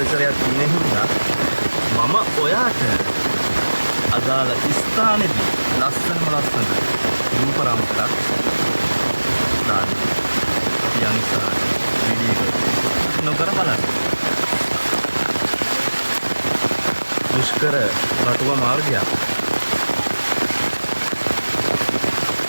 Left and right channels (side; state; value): both; inverted; correlation -1.00